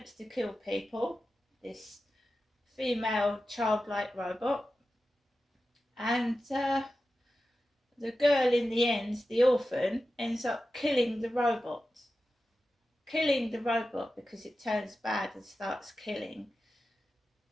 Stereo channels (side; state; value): both; normal; correlation 0.93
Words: to kill people, this female childlike robot. And the girl in the end, the orphan, ends up killing the robot. Killing the robot because it turns bad and starts killing.